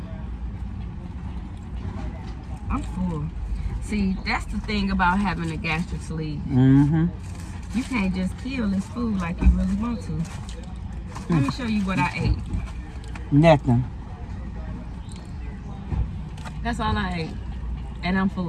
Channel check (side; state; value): both; identical; correlation 1.00